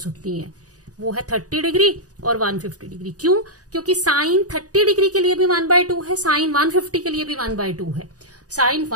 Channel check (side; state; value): left; late; 0.67 ms